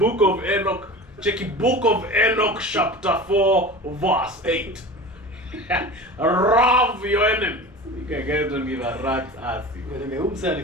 of Enoch. Check it, Book of Enoch, chapter 4, verse 8. Love your enemies. You guys don't give a rat's ass. Umse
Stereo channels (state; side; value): normal; both; correlation 0.34